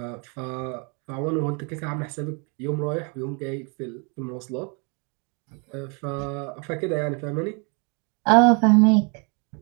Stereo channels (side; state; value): left; quieter; 34.7 dB